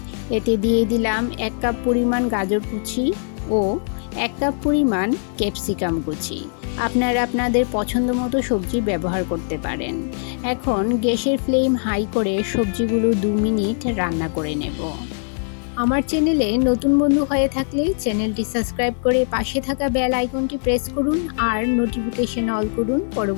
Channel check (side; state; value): right; silent; digital silence